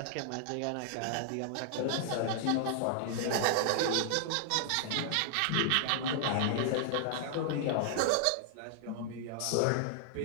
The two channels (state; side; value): different; both; correlation -0.01